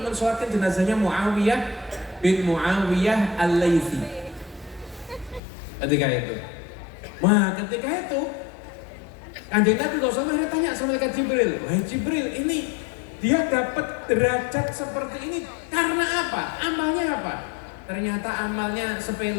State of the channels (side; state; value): right; drops out; at 5.4 s